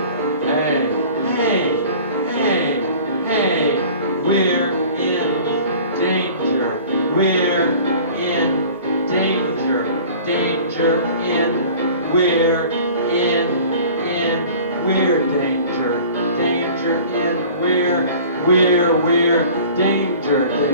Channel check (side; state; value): both; inverted; correlation -0.45